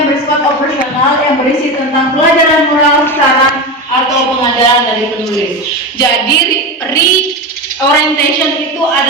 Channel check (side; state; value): both; normal; correlation 0.21